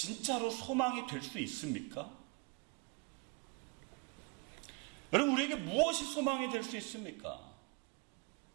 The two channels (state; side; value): quieter; left; 30.6 dB